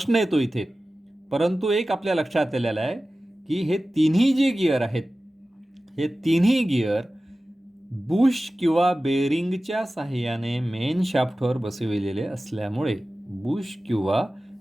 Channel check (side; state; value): both; normal; correlation 0.96